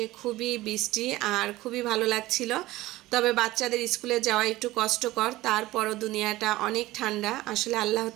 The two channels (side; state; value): left; quieter; 17.6 dB